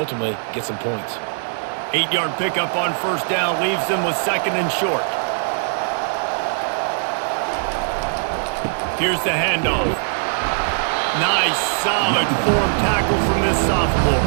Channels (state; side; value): silent; left; digital silence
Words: get some points. 8-yard pickup on first down leaves them with second and short. Here's the handoff. Nice, solid form tackle from this sophomore.